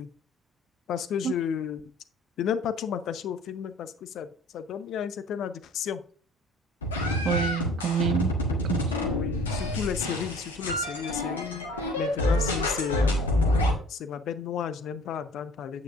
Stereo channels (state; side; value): normal; both; correlation 0.48